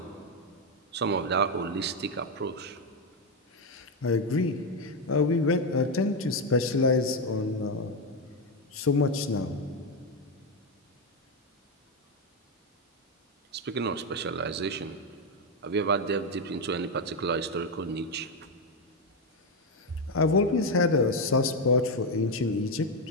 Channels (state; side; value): normal; both; correlation 0.07